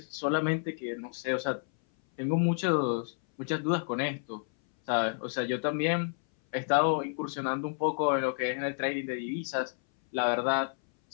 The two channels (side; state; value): right; silent; 58 dB below the other